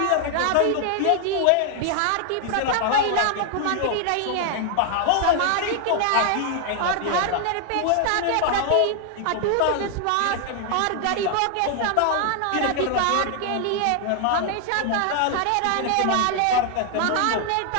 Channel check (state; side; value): different; both; correlation 0.00